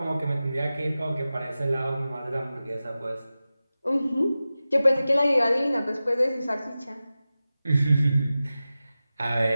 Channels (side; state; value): both; inverted; correlation -0.95